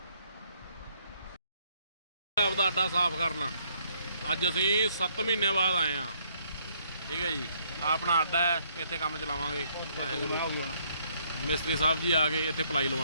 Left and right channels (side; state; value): both; inverted; correlation -0.68